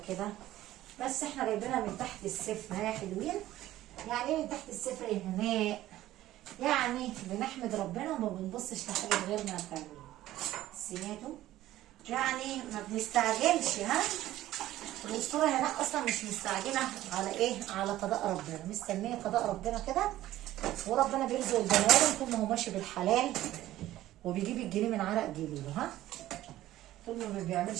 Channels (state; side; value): quieter; left; 14.7 dB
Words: كده، بس احنا جايبينها من تحت الصفر يا حلوين. يعني ايه من تحت الصفر يا هناء؟ يعني بنحمد ربنا وما بنبصش لحاجه غيرنا يا حلوين. سمعتوا؟ يعني ما بنستعجلش. الاسطوره هناء اصلا مش مستعجله على ايه؟ على قضاء ربنا، مستنيه قضاء ربنا كده، وربنا بيرزق البني ادم طول ما هو ماشي بالحلال وبيجيب الجنيه من عرق جبينه. طول ما